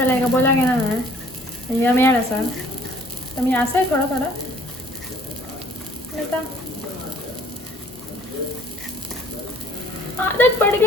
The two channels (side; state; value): both; normal; correlation 0.57